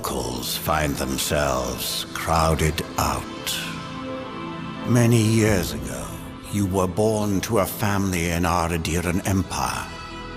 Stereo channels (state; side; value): identical; both; correlation 1.00